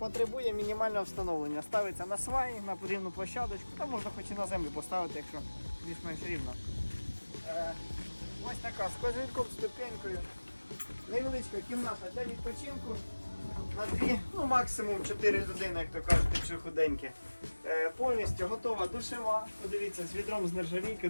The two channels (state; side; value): inverted; both; correlation -1.00